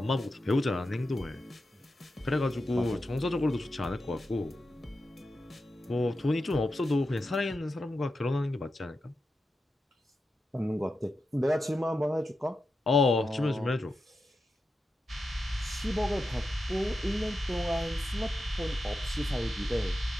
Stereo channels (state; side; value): normal; both; correlation 0.89